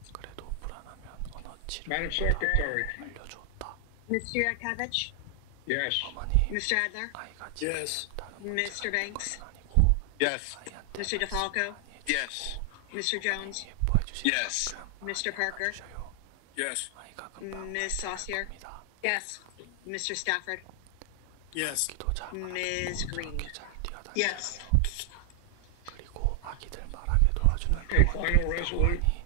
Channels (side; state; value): both; different; correlation 0.00